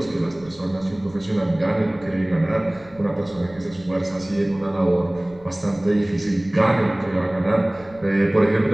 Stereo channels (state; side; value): noise; left; rumble, 24 dB below the sound